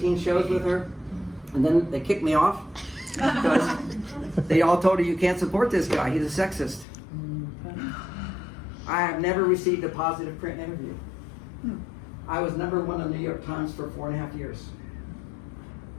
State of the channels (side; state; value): right; drops out; at 6.9 s